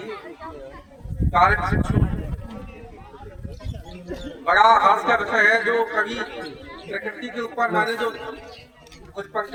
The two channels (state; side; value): identical; both; correlation 1.00